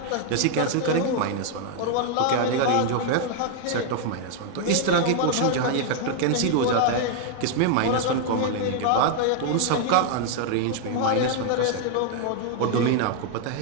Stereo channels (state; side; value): different; both; correlation 0.00